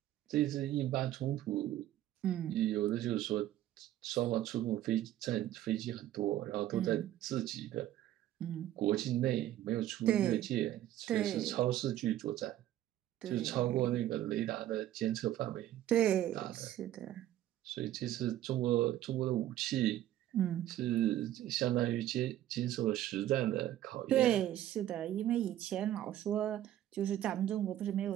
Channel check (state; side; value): quieter; left; 13.0 dB